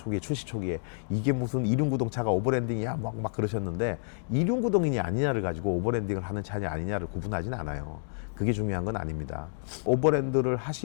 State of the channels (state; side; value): silent; right; digital silence